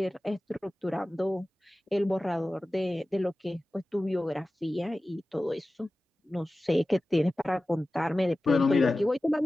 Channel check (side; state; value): both; normal; correlation 0.96